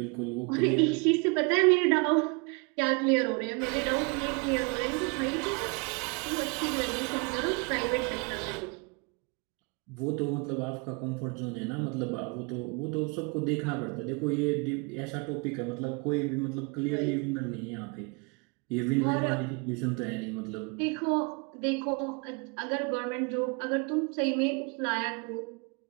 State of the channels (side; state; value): left; quieter; 31.4 dB